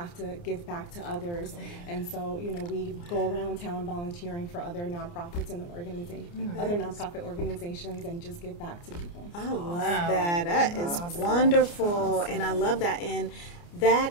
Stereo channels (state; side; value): late; right; 29 ms